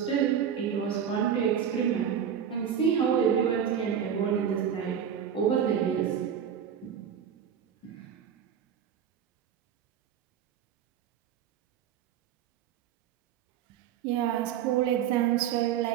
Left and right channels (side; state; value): left; quieter; 8.6 dB